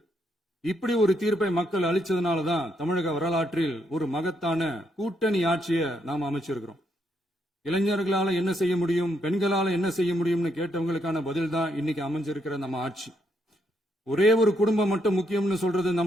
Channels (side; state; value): both; normal; correlation 0.76